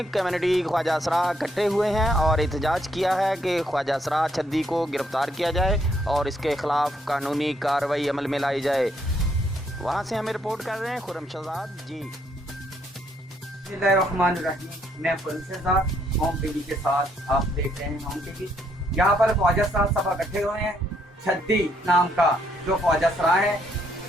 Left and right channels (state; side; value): normal; both; correlation 0.72